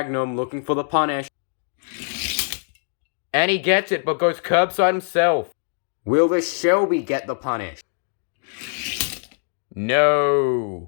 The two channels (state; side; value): silent; right; digital silence